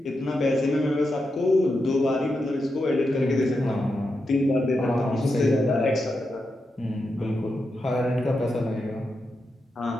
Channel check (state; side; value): normal; both; correlation 0.87